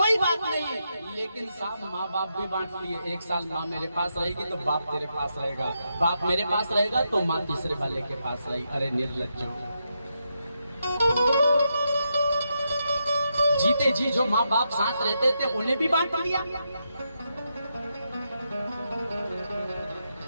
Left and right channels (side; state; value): both; inverted; correlation -0.83